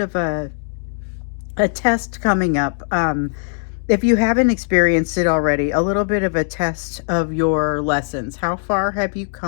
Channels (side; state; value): right; silent; 66 dB below the other